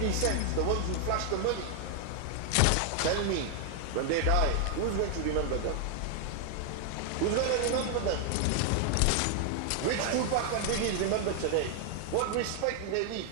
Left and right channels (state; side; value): different; both; correlation 0.00